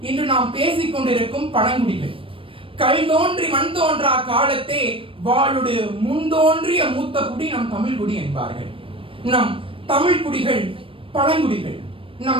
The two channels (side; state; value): left; late; 0.26 ms